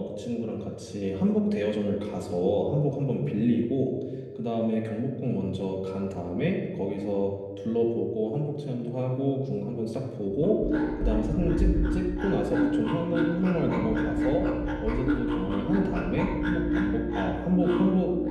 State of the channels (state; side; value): identical; both; correlation 1.00